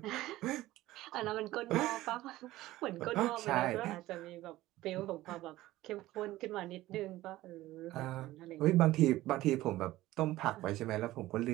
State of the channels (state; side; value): quieter; left; 16.5 dB